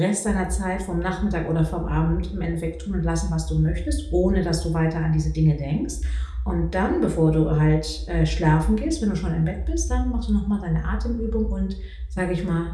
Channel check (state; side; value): identical; both; correlation 1.00